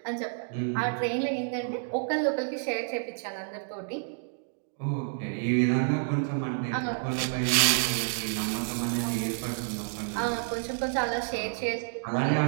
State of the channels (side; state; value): left; silent; digital silence